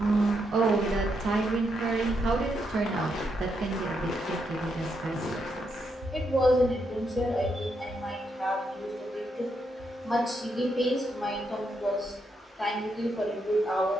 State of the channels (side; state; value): both; normal; correlation 0.80